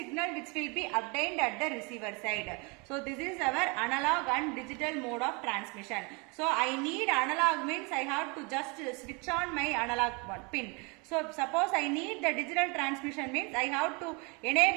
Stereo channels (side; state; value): left; quieter; 30.3 dB